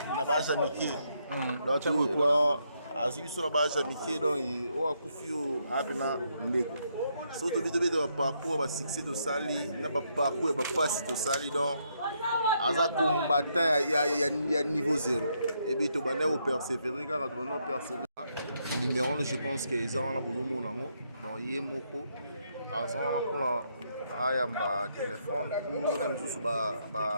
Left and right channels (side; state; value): both; inverted; correlation -0.76